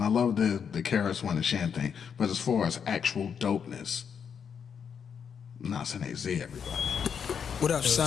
love the KRS-One and Shan thing, but as far as actual dopeness, Nas and AZ, everybody. What up,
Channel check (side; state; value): right; quieter; 7.2 dB